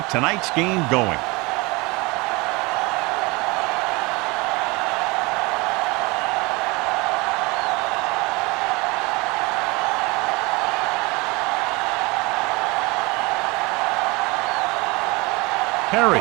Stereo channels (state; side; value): quieter; left; 25.4 dB